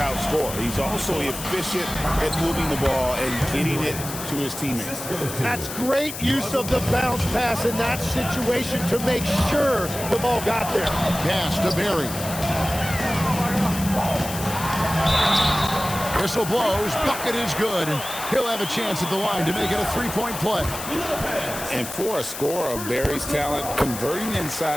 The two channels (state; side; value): noise; left; hiss, 9 dB below the sound